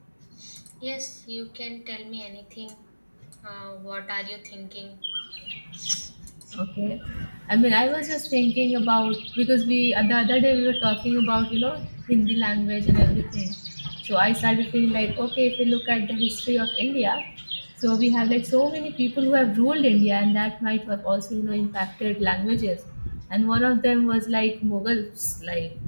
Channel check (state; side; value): inverted; both; correlation -1.00